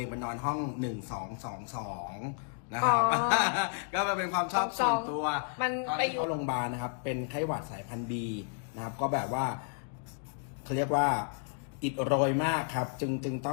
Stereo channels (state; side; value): silent; right; 56 dB below the other